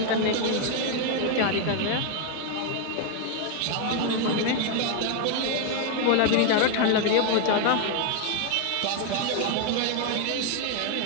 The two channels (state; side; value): different; both; correlation 0.01